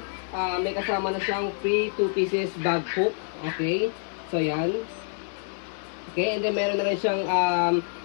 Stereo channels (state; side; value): silent; right; 59 dB below the other